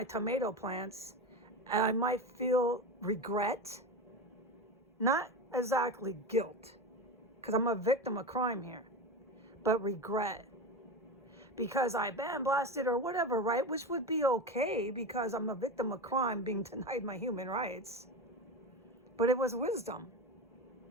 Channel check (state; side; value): normal; both; correlation 0.22